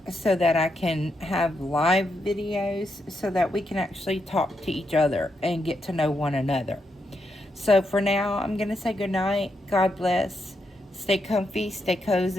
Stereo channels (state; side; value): normal; both; correlation 0.82